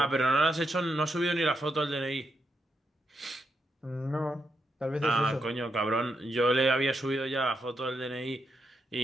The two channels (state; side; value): normal; both; correlation 0.82